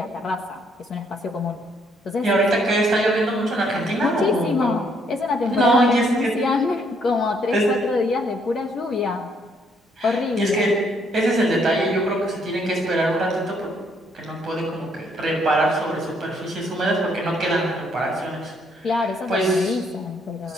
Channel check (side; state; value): both; normal; correlation 0.69